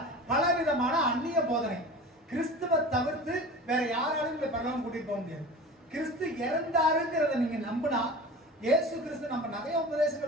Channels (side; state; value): both; normal; correlation 0.35